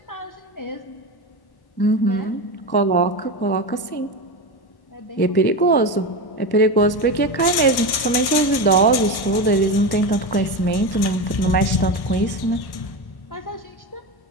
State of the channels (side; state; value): right; late; 1.1 ms